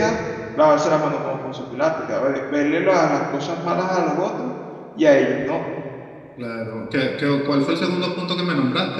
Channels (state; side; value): identical; both; correlation 1.00